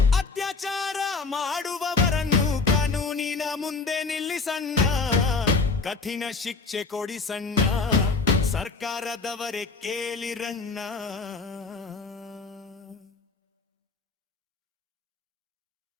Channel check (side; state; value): right; quieter; 4.2 dB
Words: ಅತ್ಯಾಚಾರ ಮಾಡುವವರನ್ನು ಕಾನೂನಿನ ಮುಂದೆ ನಿಲ್ಲಿಸಣ್ಣ, ಕಠಿಣ ಶಿಕ್ಷೆ ಕೊಡಿಸಣ್ಣ, ಸರ್ಕಾರದವರೇ ಕೇಳಿರಣ್ಣ.